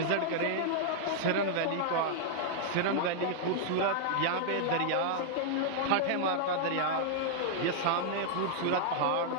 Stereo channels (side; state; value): both; different; correlation -0.01